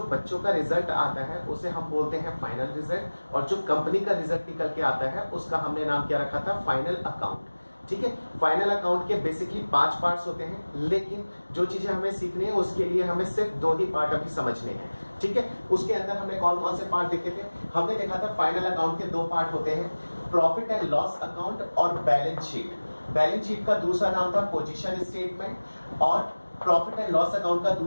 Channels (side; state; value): both; inverted; correlation -1.00